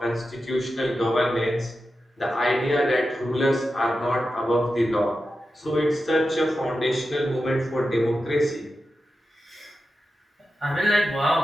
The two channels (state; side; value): normal; both; correlation 0.91